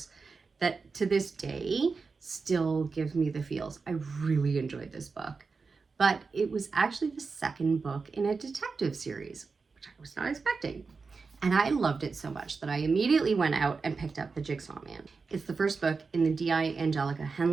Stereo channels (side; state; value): left; quieter; 4.6 dB